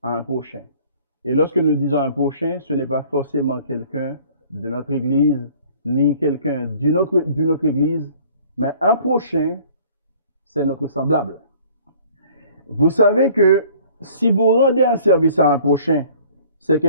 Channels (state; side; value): inverted; both; correlation -0.53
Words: à un prochain. Et lorsque nous disons un prochain, ce n'est pas forcément quelqu'un de notre église, ni quelqu'un d'une autre église, mais un prochain, c'est notre semblable. Vous savez que si vous rendez un service à un prochain, c'est